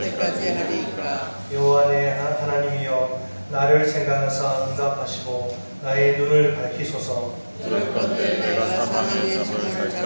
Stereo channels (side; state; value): both; inverted; correlation -1.00